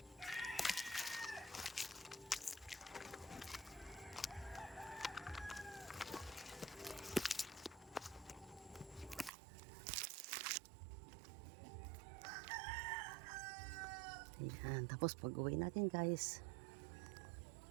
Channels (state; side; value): drops out; left; at 9.3 s